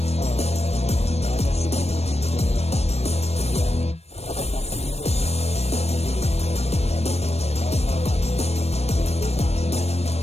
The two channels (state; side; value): late; right; 0.31 ms